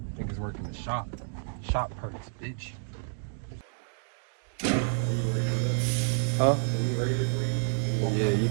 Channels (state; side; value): silent; left; digital silence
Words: Niggas working the shop. Shop perks, bitch. Huh? Yeah, you